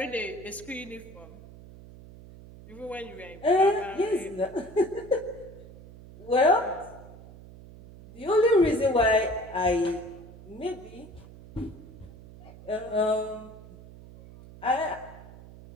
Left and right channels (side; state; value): right; noise; hum, 18 dB below the sound